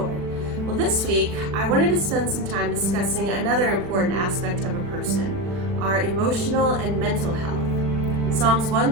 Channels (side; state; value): left; late; 40 ms